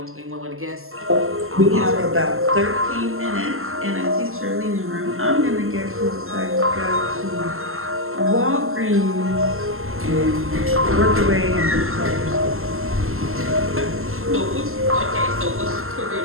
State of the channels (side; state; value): left; late; 0.62 ms